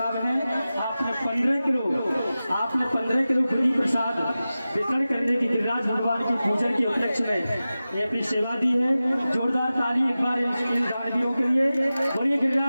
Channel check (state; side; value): inverted; both; correlation -0.95